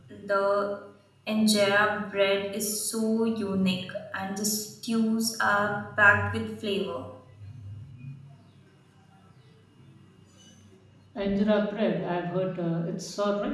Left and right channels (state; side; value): identical; both; correlation 1.00